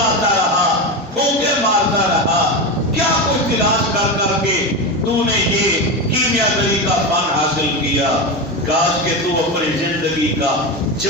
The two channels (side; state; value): both; normal; correlation 0.18